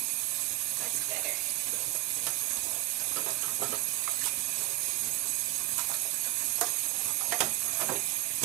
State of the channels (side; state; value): left; quieter; 17.4 dB